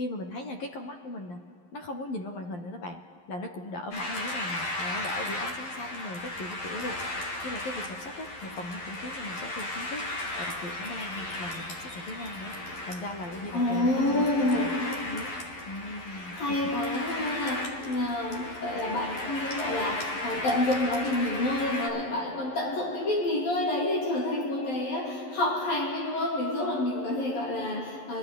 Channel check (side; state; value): right; late; 11 ms